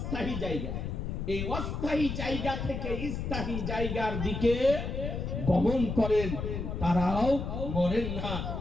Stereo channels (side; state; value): left; noise; rumble, 4 dB below the sound